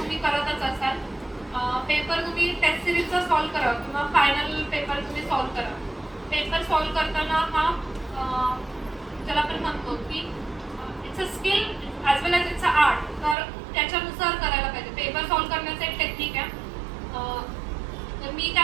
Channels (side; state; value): left; drops out; at 13.4 s